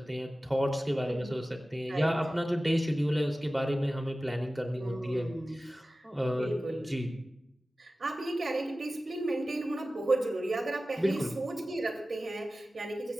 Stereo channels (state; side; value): normal; both; correlation 0.96